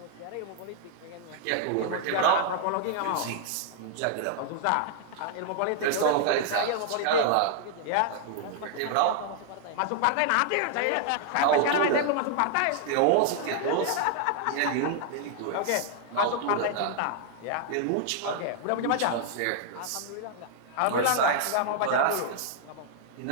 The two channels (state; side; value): different; both; correlation -0.01